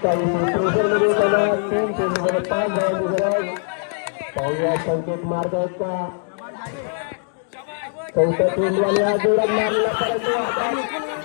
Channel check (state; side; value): silent; right; digital silence